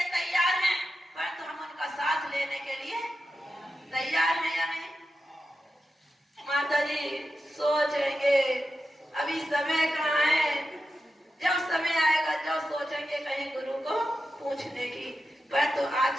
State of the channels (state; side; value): normal; both; correlation 0.90